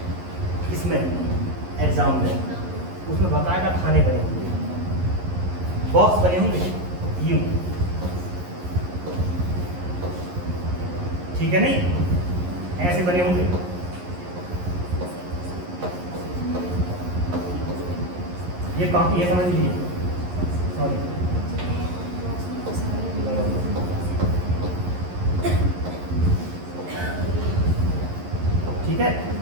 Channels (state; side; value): late; left; 11 ms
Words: इसमें एग्जाम में, उसमें बाकायदा खाने बने होंगे, बॉक्स बने होंगे यूं, ठीक है नहीं, ऐसे बने होंगे। ये कॉपी है, समझ लीजिए, सॉरी, ठीक है,